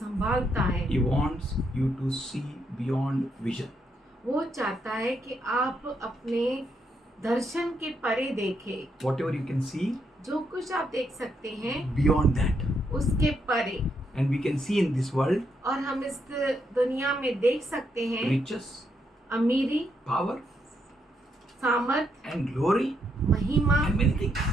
है। He wants you to see beyond vision. वो चाहता है कि आप अपने दर्शन के परे देखें, Whatever you can see, जो कुछ आप देख सकते हैं beyond that. उसके परे। And we can see in this world और हम इस दुनिया में देख सकते हैं riches, अमीरी, power, सामर्थ, and glory, महिमा and many things.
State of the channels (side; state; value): both; normal; correlation 0.78